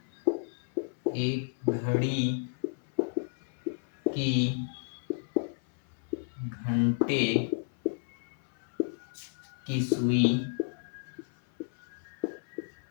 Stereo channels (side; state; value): right; silent; 56 dB below the other